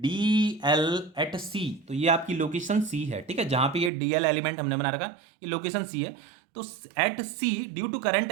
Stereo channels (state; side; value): drops out; left; at 3.9 s